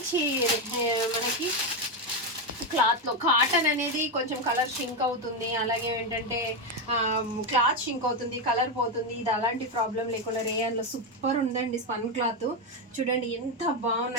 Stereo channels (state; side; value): normal; both; correlation 0.08